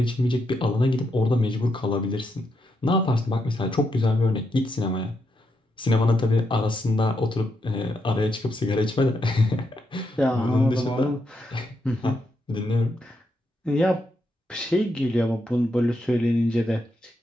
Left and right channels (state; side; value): normal; both; correlation 0.81